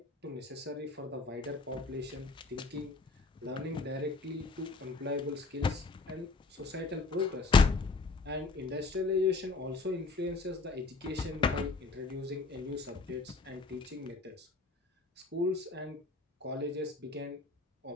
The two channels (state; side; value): quieter; right; 3.8 dB